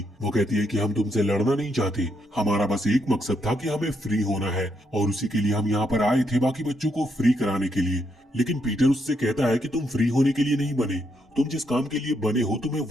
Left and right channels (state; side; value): normal; both; correlation 0.77